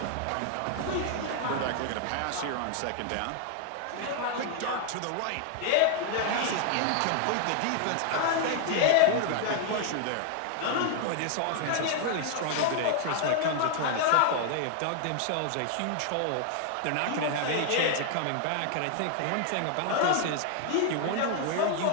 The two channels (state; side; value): different; both; correlation 0.00